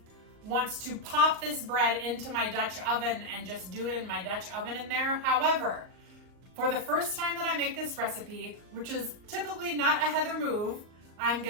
wants to pop this bread into my Dutch oven and just do it in my Dutch oven in there. However, for the first time that I make this recipe, which is typically not a Heather move, I'm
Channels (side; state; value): left; late; 38 ms